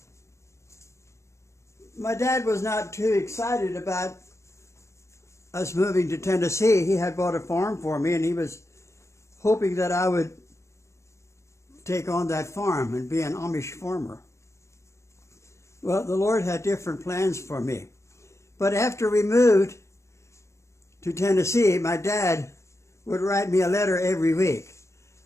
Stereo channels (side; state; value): right; late; 0.14 ms